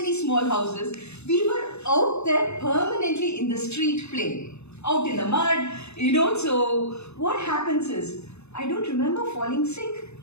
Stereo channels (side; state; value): right; late; 0.81 ms